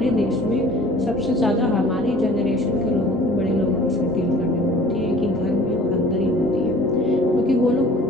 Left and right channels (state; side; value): normal; both; correlation 0.48